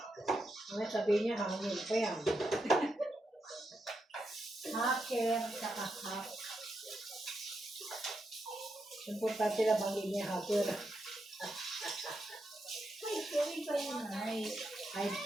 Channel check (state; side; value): normal; both; correlation 0.84